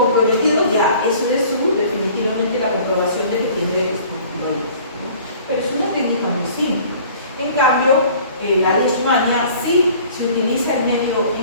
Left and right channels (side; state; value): both; inverted; correlation -0.50